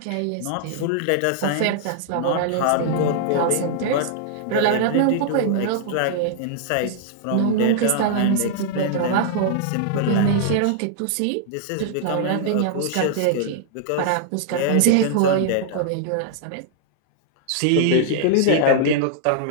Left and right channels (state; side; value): different; both; correlation -0.01